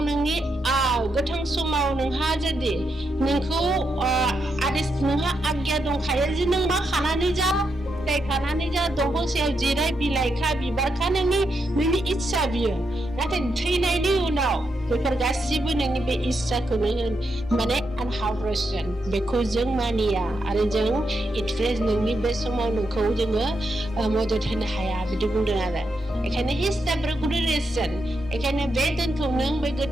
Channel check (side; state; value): both; normal; correlation 0.83